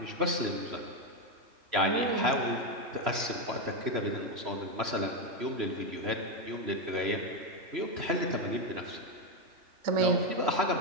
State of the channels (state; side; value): late; left; 3.0 ms